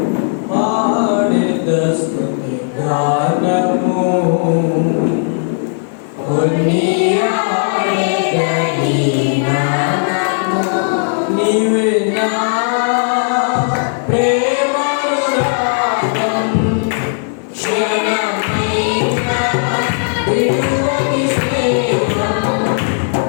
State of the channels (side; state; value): right; silent; digital silence